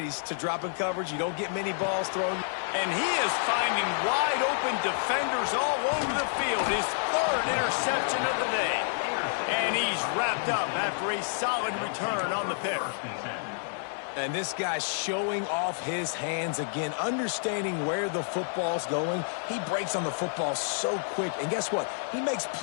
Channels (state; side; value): silent; right; digital silence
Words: to drop in coverage. You don't get many balls thrown. And he is finding wide-open defenders all over the field. His third interception of the day. And he's wrapped up after a solid return on the pick. And this guy's showing off his hands again, understanding where the football's going. He breaks on the football so quick. And guess what? He makes